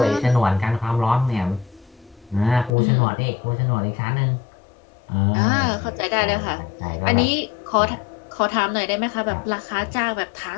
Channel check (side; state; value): right; drops out; at 2.7 s